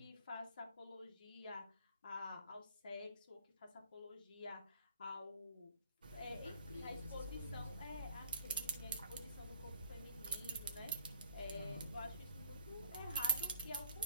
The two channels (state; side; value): inverted; both; correlation -0.57